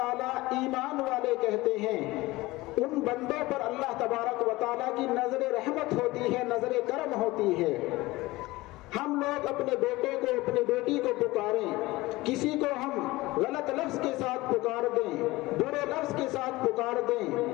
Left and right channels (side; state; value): right; quieter; 20.0 dB